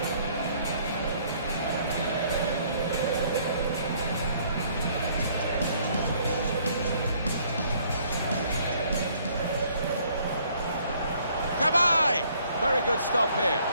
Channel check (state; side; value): inverted; both; correlation -0.63